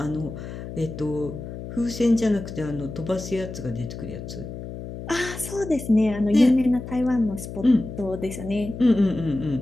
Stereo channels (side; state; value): left; noise; hum, 10 dB below the sound